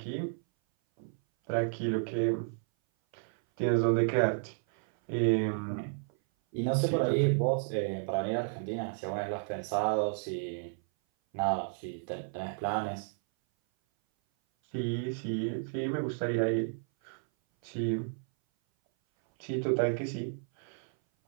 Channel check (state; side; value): silent; left; 56 dB below the other